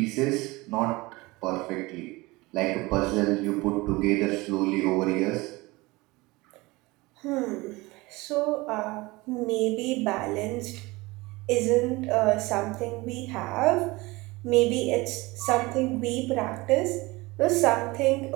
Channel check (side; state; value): left; quieter; 22.2 dB